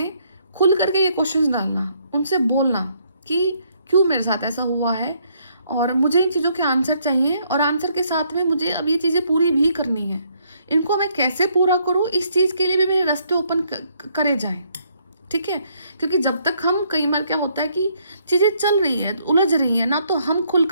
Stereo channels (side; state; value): both; inverted; correlation -0.70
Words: खुल करके ये क्वेश्चंस डालना, उनसे बोलना कि क्यों मेरे साथ ऐसा हुआ है और मुझे इन चीज़ों के आंसर चाहिए, और आंसर के साथ में मुझे अब ये चीज़ें पूरी भी करनी है। इनको मैं कैसे पूरा करूँ, इस चीज़ के लिए भी मेरे रास्ते ओपन करे जाएं, ठीक है। क्योंकि जब तक हम, कई बार क्या होता है कि चीज़ें चल रही हैं, उलझ रही हैं ना, तो हम खुल